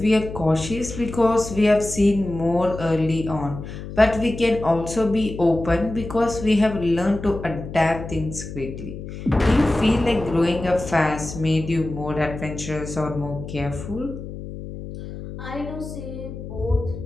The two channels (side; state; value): left; noise; hum, 10 dB below the sound